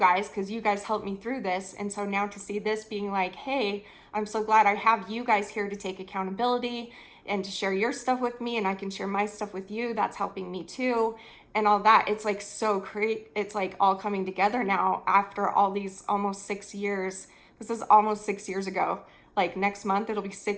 because you guys helped me through this, and so now to see this being like, hey, I'm so glad I have you guys here to take accountability and to share your stuff with me, and I can share my stuff with you. That's helping me too, and all that. It's like so great. It's like all coming together now after all these almost 6 years. This is almost 6 years ago. Like next month, it'll be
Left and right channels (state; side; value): identical; both; correlation 1.00